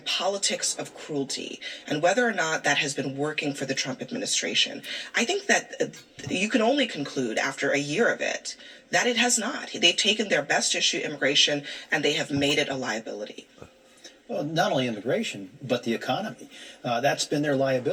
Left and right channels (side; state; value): both; identical; correlation 1.00